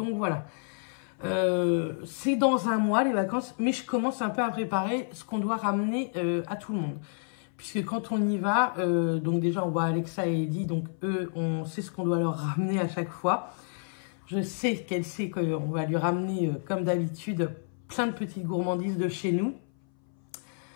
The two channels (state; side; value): silent; right; 58 dB below the other